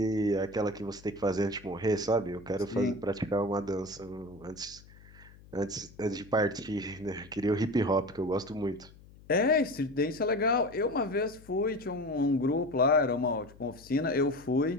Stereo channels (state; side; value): noise; left; hum, 22 dB below the sound